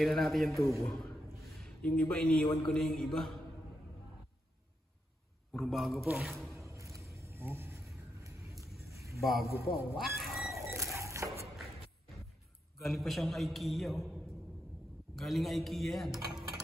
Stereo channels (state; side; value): normal; both; correlation 0.84